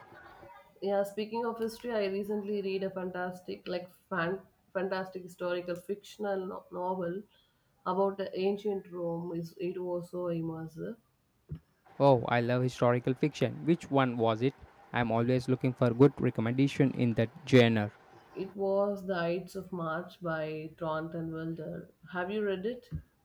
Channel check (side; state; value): both; identical; correlation 1.00